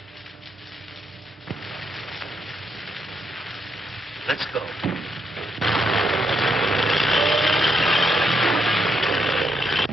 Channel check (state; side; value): normal; both; correlation 0.78